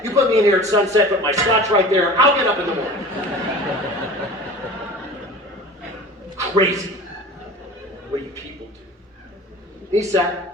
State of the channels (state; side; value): normal; both; correlation 0.39